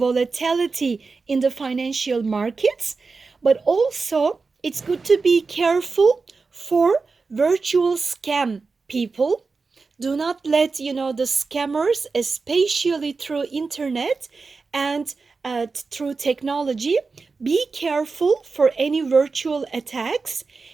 in the financial markets. But also, it's good to be careful for virtual scam people. Do not let, the scammers, especially through internet and through technology, be careful for any virtual attacks,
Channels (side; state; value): left; quieter; 4.3 dB